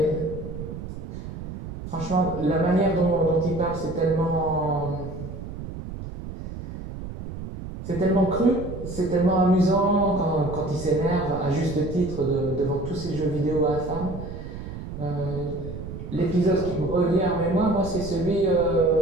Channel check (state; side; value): noise; right; rumble, 9 dB below the sound